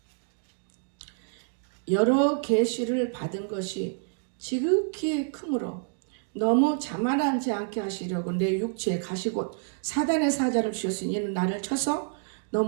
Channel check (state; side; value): silent; left; digital silence